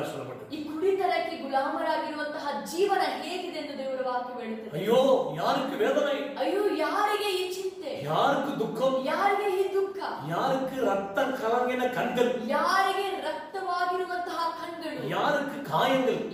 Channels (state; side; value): identical; both; correlation 1.00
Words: சொல்லப்பட்டது. ಈ ಕುಡಿತನಕ್ಕೆ ಗುಲಾಮರಾಗಿರುವಂತಹ ಜೀವನ ಹೇಗಿದೆ ಎಂದು ದೇವರ ವಾಕ್ಯ ಹೇಳುತ್ತದೆ. ஐயோ, யாருக்கு வேதனை? ಅಯ್ಯೋ, ಯಾರಿಗೆ ಈ ಚಿಂತೆ? யாருக்கு துக்கம்? ಯಾರಿಗೆ ಈ ದುಃಖ? யாருக்கு ரத்த கலங்கின கண்கள்? ಯಾರಿಗೆ ರಕ್ತವಾಗಿರುವಂತಹ ಕಣ್ಣುಗಳು? யாருக்கு காயங்கள்?